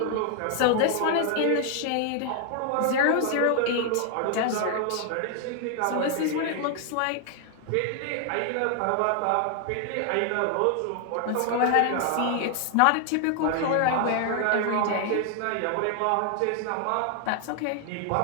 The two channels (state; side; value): different; both; correlation 0.00